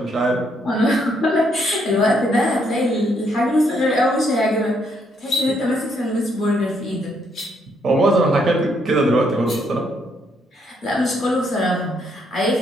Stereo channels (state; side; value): normal; both; correlation 0.73